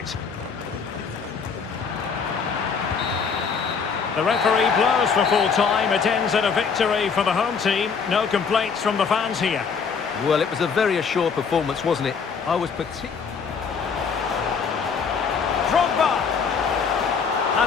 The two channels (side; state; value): right; quieter; 5.9 dB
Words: The referee blows for full time. It ends in a victory for the home team. No complaints from the fans here. Well, it was a very assured performance, wasn't it? I was particularly... Drogba!